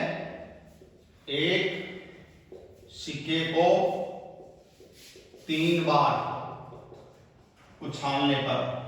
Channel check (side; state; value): both; identical; correlation 1.00